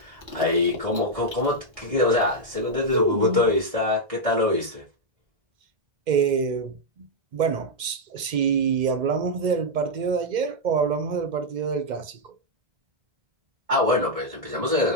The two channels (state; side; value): late; left; 2.1 ms